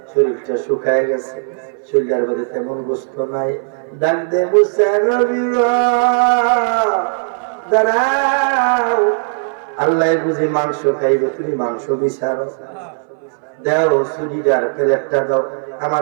শরীরটা শুকায় গেছে, শরীরের মধ্যে তেমন গোস্ত নাই। ডাক দে মুসা নবী দাঁড়াও, আল্লাহ বুঝি মাংস খাইবে, তুমি মাংস বিচারো, দাও শরীর প্লেটটা দাও,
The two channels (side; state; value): left; silent; 61 dB below the other